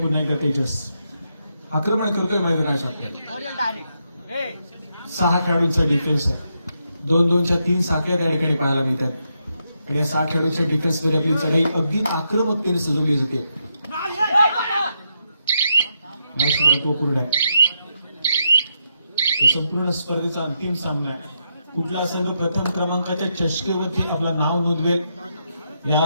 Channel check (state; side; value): inverted; both; correlation -0.81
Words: एकदा तेजस आक्रमण करतोय मैदानाच्या. 6 खेळाडूंचा डिफेन्स आहे. 2-2च्या 3 साखळ्या त्या ठिकाणी पाहायला मिळतात. आणि या 6 खेळाडूंच्या डिफेन्समध्ये आपली चढाई अगदी आक्रमकतेने सजवली जाते. संपूर्ण स्पर्धेचा अंतिम सामना आहे. कुठला संघ प्रथम क्रमांकाच्या चषकेवरती आपलं नाव नोंदवेल